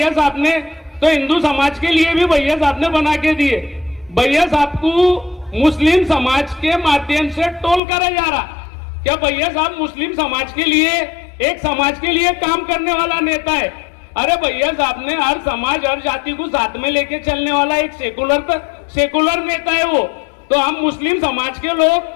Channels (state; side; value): drops out; right; at 7.8 s